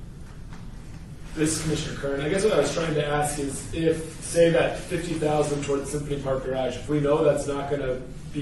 This is Commissioner Kern. I guess what I was trying to ask is if, say, that 50,000 toward the Symphony Park garage, if we know that's not going to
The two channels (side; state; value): both; identical; correlation 1.00